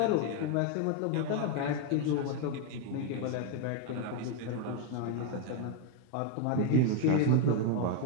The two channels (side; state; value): both; different; correlation 0.01